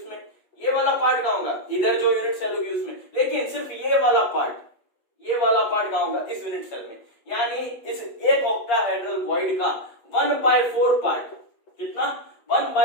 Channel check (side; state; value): right; late; 8.6 ms